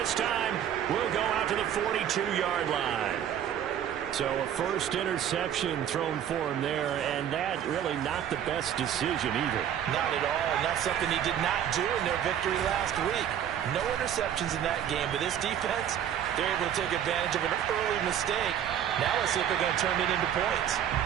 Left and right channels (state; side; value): quieter; left; 9.8 dB